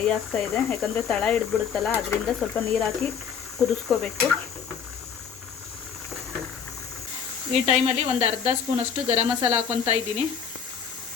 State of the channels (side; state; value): right; quieter; 7.1 dB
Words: ಆಗ್ತಾ ಇದೆ. ಯಾಕಂದರೆ ತಳ ಹಿಡಿದ್ಬಿಡುತ್ತಲ್ಲ, ಅದರಿಂದ ಸ್ವಲ್ಪ ನೀರು ಹಾಕಿ ಕುದಿಸ್ಕೋಬೇಕು. ಈ ಟೈಮಲ್ಲಿ ಒಂದು ಅರ್ಧ ಸ್ಪೂನಷ್ಟು ಗರಂ ಮಸಾಲ ಹಾಕೊತಾ ಇದ್ದೀನಿ.